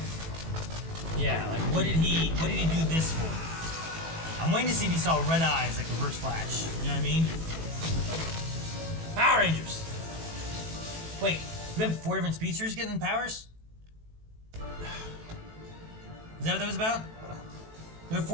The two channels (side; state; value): left; late; 18 ms